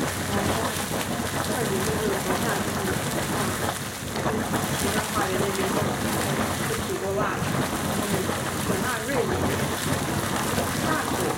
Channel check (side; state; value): both; identical; correlation 1.00